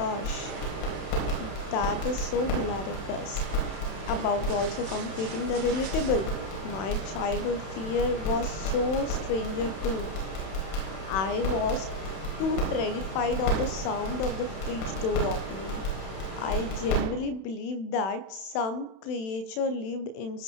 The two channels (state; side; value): late; right; 31 ms